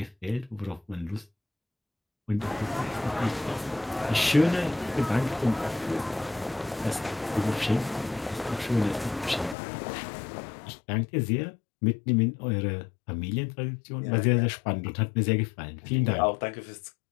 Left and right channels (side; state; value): right; drops out; at 9.6 s